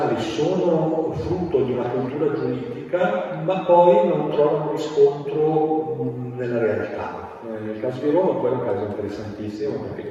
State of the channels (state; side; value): identical; both; correlation 1.00